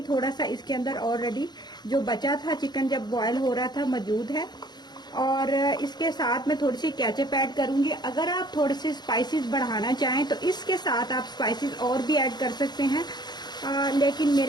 थोड़ा सा इसके अंदर ऑलरेडी जो बचा था चिकन जब बॉयल हो रहा था मौजूद है। और इसके साथ मैं थोड़ी सी केचप ऐड करूंगी। अगर आप थोड़े से स्पाइसेस बढ़ाना चाहें तो इसके साथ आप स्पाइसेस और भी ऐड कर सकते हैं, लेकिन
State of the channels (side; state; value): right; late; 0.20 ms